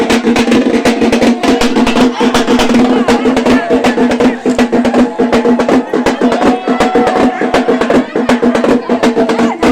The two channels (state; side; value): identical; both; correlation 1.00